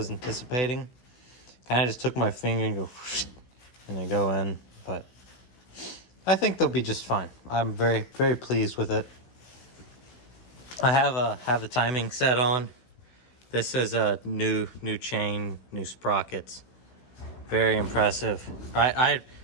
anticipating. Kind of just took my finger and go, and they go in. But I think they'll be just fine. I'm very, very pleased with it. I have the timing set on. This is a new chain, new sprockets. Very impressive.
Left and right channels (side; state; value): right; late; 16 ms